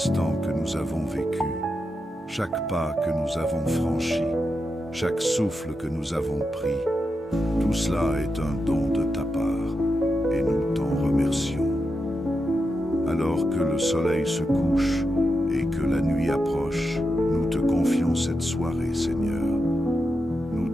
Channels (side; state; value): both; normal; correlation 0.87